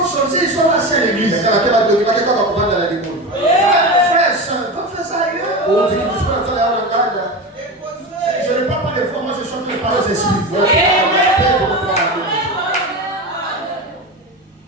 sortis, ils sont assis à l'église. Frère, soeur, va faire ça ailleurs. Je ne parle pas de foi, moi je chante les paroles des esprits.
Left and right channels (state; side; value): normal; both; correlation 0.23